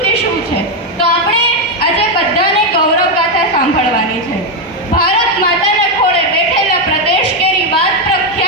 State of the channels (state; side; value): normal; both; correlation 0.05